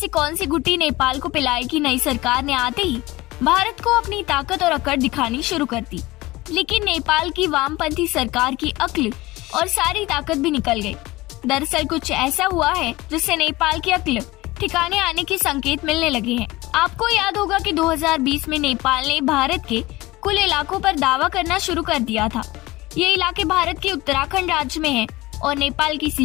कौन सी गुट्टी नेपाल को पिलाई कि नई सरकार ने आते ही भारत को अपनी ताकत और अकड़ दिखानी शुरू कर दी। लेकिन नेपाल की वामपंथी सरकार की अक्ल और सारी ताकत भी निकल गई। दरअसल कुछ ऐसा हुआ है जिससे नेपाल की अक्ल ठिकाने आने के संकेत मिलने लगे हैं। आपको याद होगा कि 2020 में नेपाल ने भारत के कुल इलाकों पर दावा करना शुरू कर दिया था। ये इलाके भारत के उत्तराखंड राज्य में हैं और नेपाल की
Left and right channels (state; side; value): quieter; right; 19.8 dB